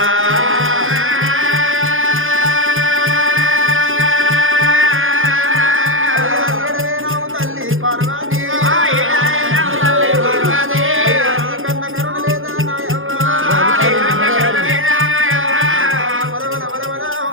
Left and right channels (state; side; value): late; left; 0.59 ms